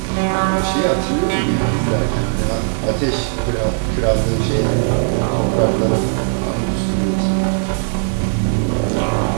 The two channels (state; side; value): silent; left; digital silence